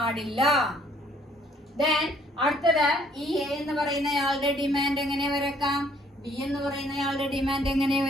ദെൻ അടുത്തത് ഈ എ എന്ന് പറയുന്നയാളുടെ ഡിമാൻഡ് എങ്ങനെ വരക്കാം, ബി എന്ന് പറയുന്നയാളുടെ ഡിമാൻഡ് എങ്ങനെ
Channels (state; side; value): normal; both; correlation 0.62